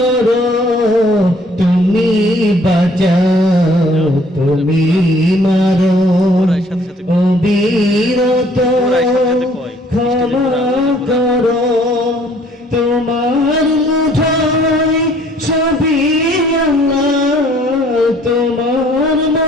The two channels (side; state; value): both; normal; correlation 0.59